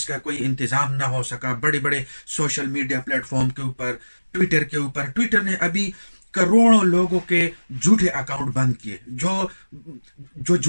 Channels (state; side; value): inverted; both; correlation -1.00